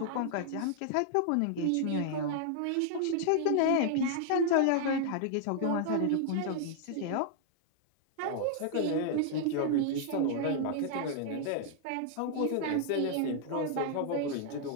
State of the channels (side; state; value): both; different; correlation -0.01